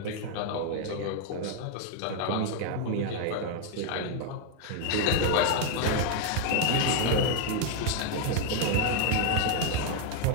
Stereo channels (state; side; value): different; both; correlation 0.01